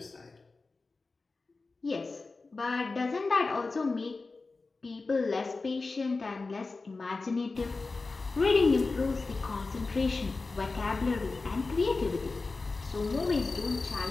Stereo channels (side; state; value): right; quieter; 3.8 dB